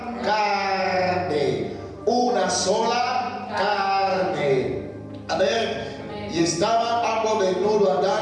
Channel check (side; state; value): both; identical; correlation 1.00